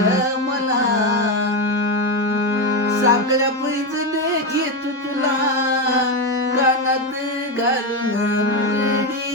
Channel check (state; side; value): normal; both; correlation 0.11